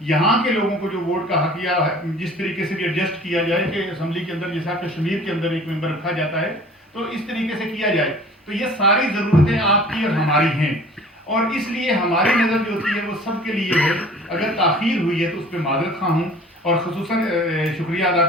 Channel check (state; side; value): normal; both; correlation 0.47